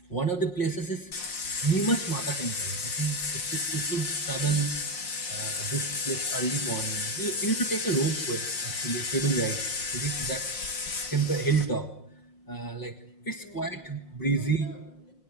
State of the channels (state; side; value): late; right; 5.6 ms